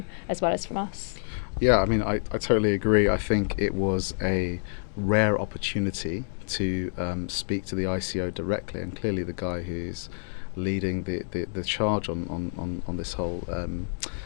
as well as from us. Yeah, I mean, I totally agree. I think it was a rare opportunity to speak to the ICO directly, and clearly the guy who's leading the charge on this whole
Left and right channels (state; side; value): silent; right; digital silence